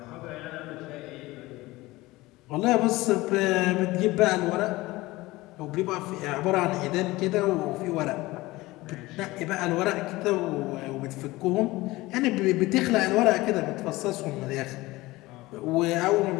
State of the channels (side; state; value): right; quieter; 19.8 dB